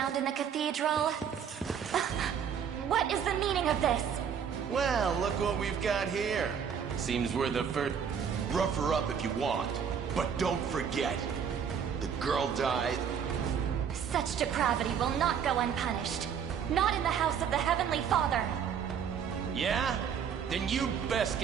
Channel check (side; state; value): left; quieter; 7.6 dB